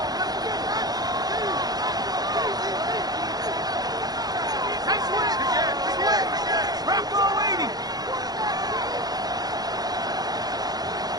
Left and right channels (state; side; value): late; left; 0.19 ms